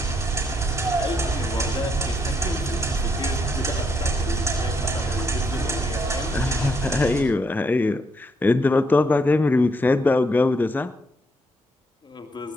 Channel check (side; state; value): both; normal; correlation 0.76